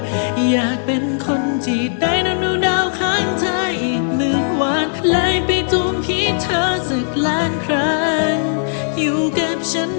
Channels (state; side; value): silent; right; digital silence